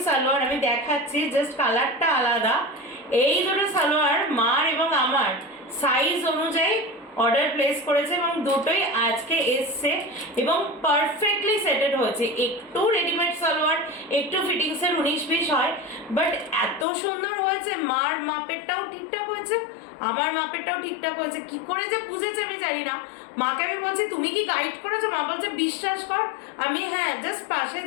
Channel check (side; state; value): right; drops out; at 16.9 s